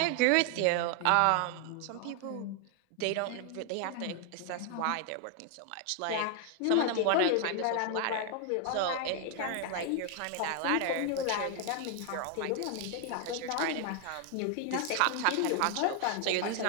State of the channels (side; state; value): both; different; correlation 0.00